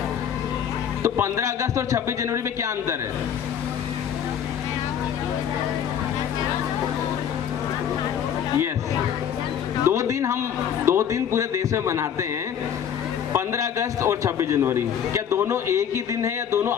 तो 15 अगस्त और 26 जनवरी में क्या अंतर है? यस, 2 दिन पूरे देश में मनाते हैं, 15 अगस्त और 26 जनवरी। क्या दोनों एक ही दिन है या दोनों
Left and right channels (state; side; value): quieter; right; 8.7 dB